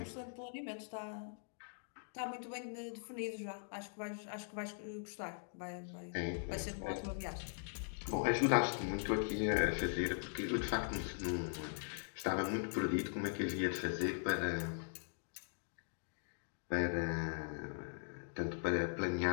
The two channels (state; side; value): silent; right; digital silence